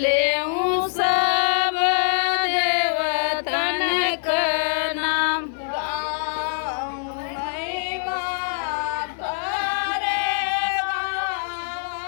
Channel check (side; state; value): right; silent; 63 dB below the other